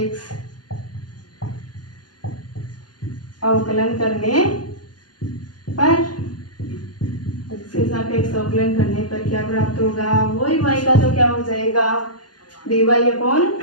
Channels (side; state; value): right; late; 0.70 ms